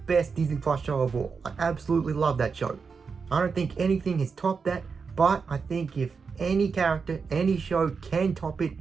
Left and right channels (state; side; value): quieter; left; 5.3 dB